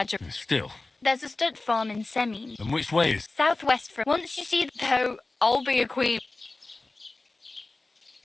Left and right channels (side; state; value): right; quieter; 3.2 dB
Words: Still. There's a stud farm in Semin. And which way is... Southwest from. Once you see though, I'll be a queen.